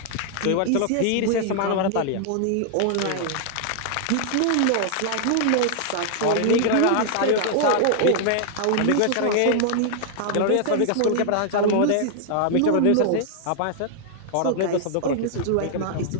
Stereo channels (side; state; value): both; different; correlation 0.00